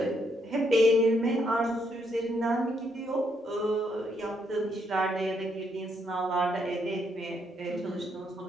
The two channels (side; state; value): both; normal; correlation 0.74